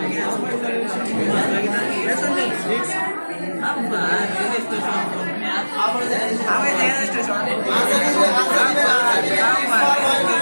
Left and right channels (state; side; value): inverted; both; correlation -1.00